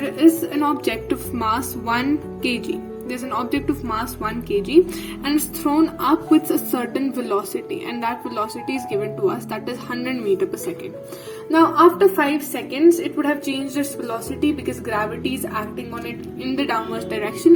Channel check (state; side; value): identical; both; correlation 1.00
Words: is an object of mass 1 kg. There's an object of mass 1 kg and it's thrown up with a certain velocity, and that velocity is given to us, that is 100 meter per second. Now after 5 seconds it would have changed its velocity because gravity is acting on it in the downwards